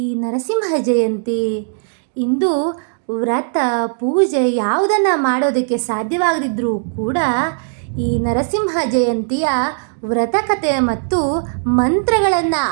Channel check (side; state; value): left; silent; digital silence